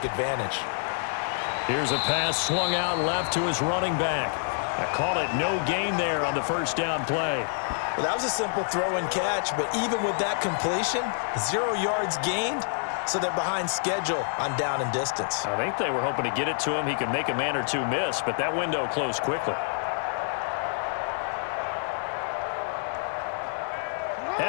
advantage. Here's a pass swung out left to his running back. I call it no gain there on the first down play. Well, that was a simple throw and catch, but even with that completion, 0 yards gained, so they're behind schedule on down and distance. I think they were hoping to get it to him. He could make a man or two miss, but that window closed quickly.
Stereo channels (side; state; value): right; silent; digital silence